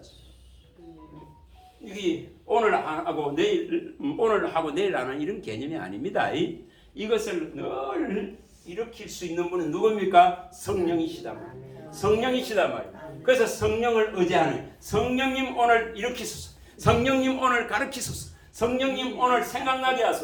이게 오늘 하고 내일 안 하는 이런 개념이 아닙니다. 이것을 늘 일으킬 수 있는 분은 누굽니까? 성령이시다 말이에요. 성령이시다 말이에요. 그래서 성령을 의지하는 성령님 오늘 일으키소서. 성령님 오늘 가르치소서. 성령님 오늘 생각나게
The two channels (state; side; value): identical; both; correlation 1.00